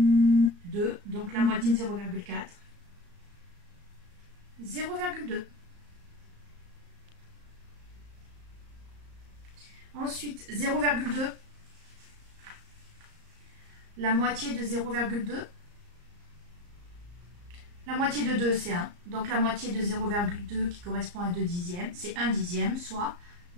Donc la moitié de 0,4. 0,2. Ensuite, 0,2. La moitié de 0,2. La moitié de 2, c'est 1. Donc la moitié de 0,2 qui correspond à 2 dixièmes, c'est 1 dixième, soit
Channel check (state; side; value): late; left; 34 ms